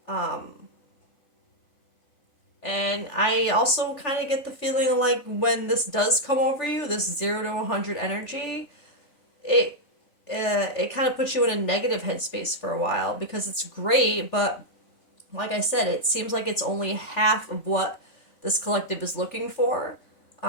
And I also kind of get the feeling like when this does come over you, this 0 to 100 energy, it it kind of puts you in a negative headspace for a while because it's great, but like I said, it seems like it's only half of what this collective is looking for.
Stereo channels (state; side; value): late; right; 3.4 ms